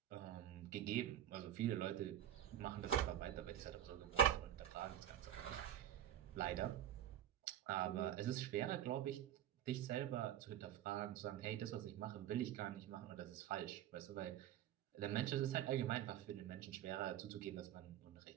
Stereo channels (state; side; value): quieter; left; 11.1 dB